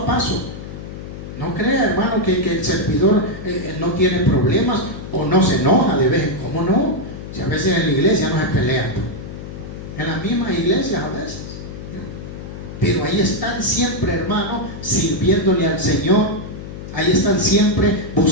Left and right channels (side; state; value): left; noise; hum, 11 dB below the sound